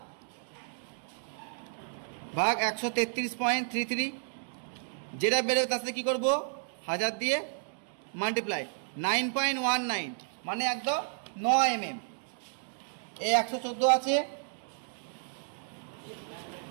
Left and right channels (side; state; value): left; silent; digital silence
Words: 133.33, যেটা বেরোবে তার সাথে কী করবো 1000 দিয়ে মাল্টিপ্লাই 9.19 মানে একদম 9 mm। এই 114 আছে,